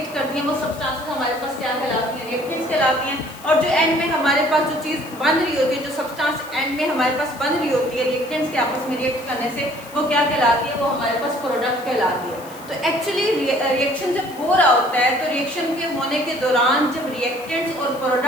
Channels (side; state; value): left; noise; hiss, 20 dB below the sound